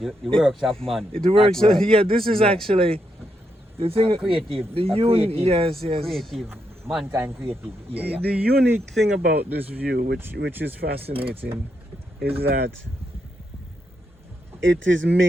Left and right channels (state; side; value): normal; both; correlation 0.81